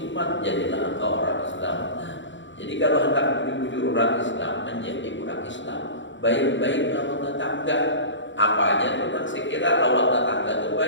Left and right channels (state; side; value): late; right; 0.54 ms